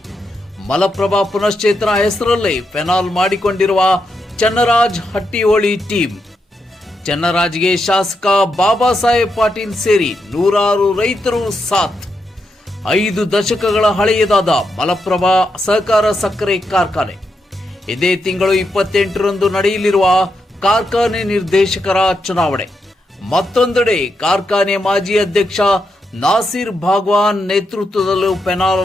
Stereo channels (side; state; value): both; normal; correlation 0.83